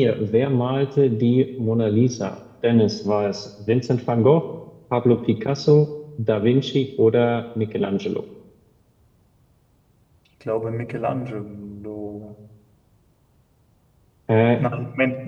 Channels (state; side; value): identical; both; correlation 1.00